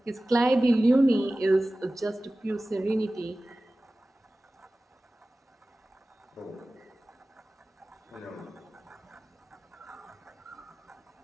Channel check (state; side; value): normal; both; correlation 0.97